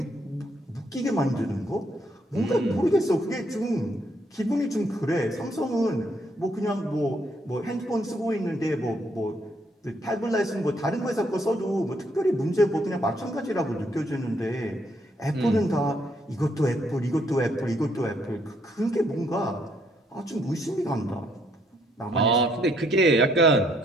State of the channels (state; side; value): normal; both; correlation 0.71